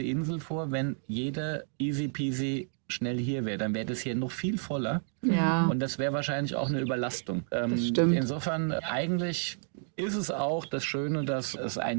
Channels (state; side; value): silent; left; 57 dB below the other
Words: Insel vor, wenn jeder easy peasy schnell hier wäre, dann wäre das hier noch viel voller. Ja. Und das wäre wahrscheinlich auch eine Überlastung. stimmt. Insofern eigentlich ist es auch das Schöne, dass es